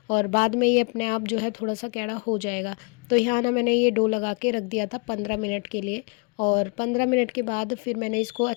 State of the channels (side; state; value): right; quieter; 33.0 dB